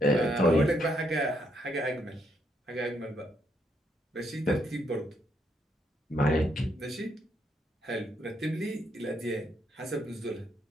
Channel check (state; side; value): normal; both; correlation 0.75